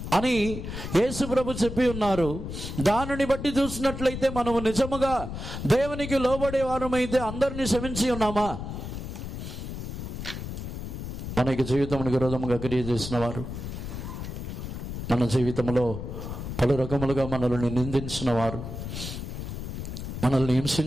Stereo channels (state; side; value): noise; left; rumble, 7 dB below the sound